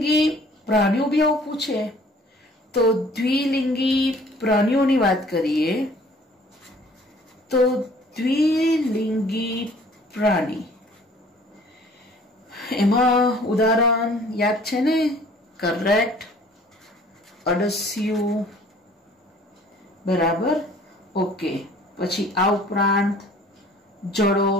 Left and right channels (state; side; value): normal; both; correlation 0.53